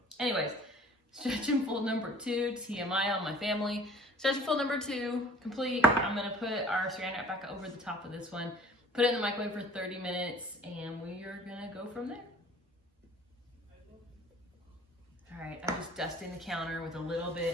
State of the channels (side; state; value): both; normal; correlation 0.49